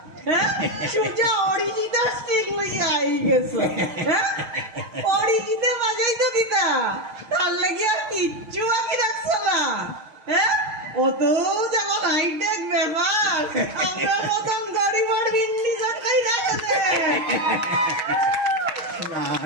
হ্যাঁ, সুজা অরিজিতার স্টিক লইয়া আই গেছে। হ্যাঁ, অরিজিতে বাজাই তো দিতা, তার লাগি আর কিচ্ছু বাকি রাখছো না। হ্যাঁ, অত যেমন হাইটেক ব্যাপার, আমরা মতন গরিবার বিন্দি সরকারি দেখা না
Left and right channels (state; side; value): late; left; 6.4 ms